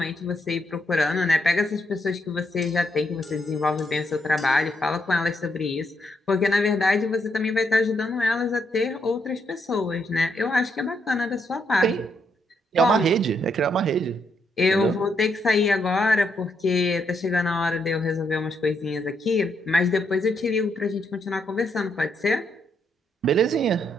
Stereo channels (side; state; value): both; normal; correlation 0.77